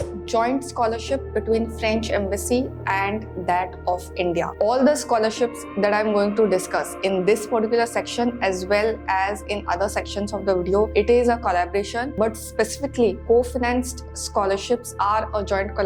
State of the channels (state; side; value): identical; both; correlation 1.00